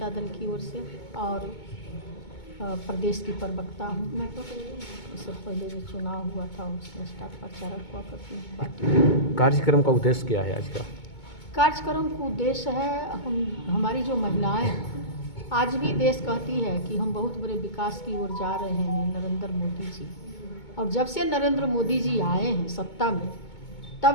दल की ओर से और प्रदेश की प्रवक्ता हूँ। मैं तो इससे पहले जो चुनाव हुआ था उसमें स्टाफ प्रचारक हुआ करती हूँ पार्टी। कार्यक्रम का उद्देश्य क्या है आज का? कार्यक्रम का उद्देश्य है हमारी जो महिलाएं आज भी देश कहती है कि हम बहुत बड़े विकास की ओर जा रहे हैं नरेंद्र मोदी जी। और जब से नरेंद्र मोदी जी आए हैं सत्ता में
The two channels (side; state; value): right; late; 2.2 ms